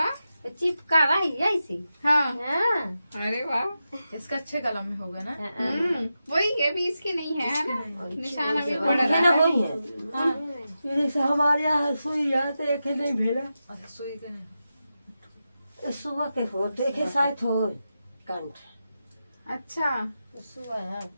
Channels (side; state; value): both; inverted; correlation -0.90